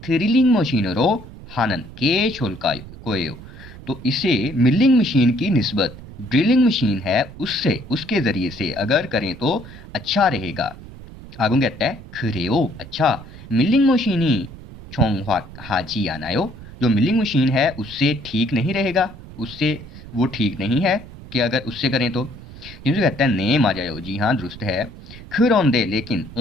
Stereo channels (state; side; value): noise; right; rumble, 16 dB below the sound